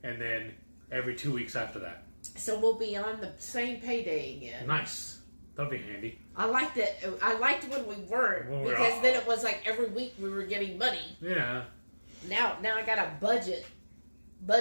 And then every 2 weeks after that. So we'll be on the same payday again. Nice. That'll be handy. I liked it. I liked when we weren't because then it was like every week we were getting money. Yeah. Now I got a budget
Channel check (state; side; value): inverted; both; correlation -1.00